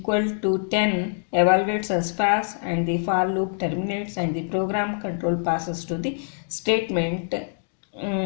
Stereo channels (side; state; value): right; silent; digital silence